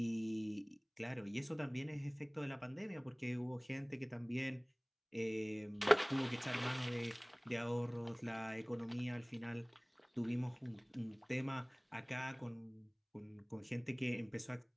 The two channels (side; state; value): both; identical; correlation 1.00